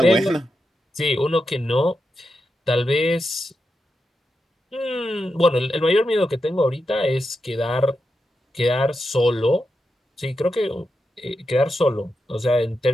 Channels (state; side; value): normal; both; correlation 0.88